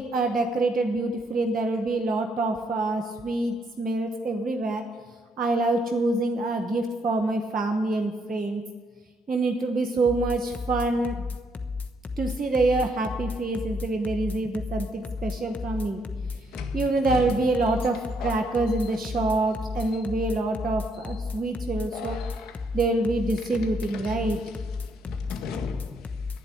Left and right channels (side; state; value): both; normal; correlation 0.73